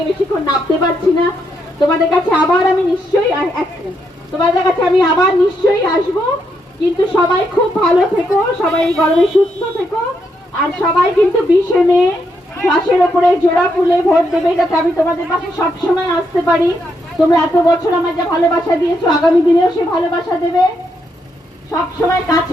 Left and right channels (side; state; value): both; normal; correlation 0.79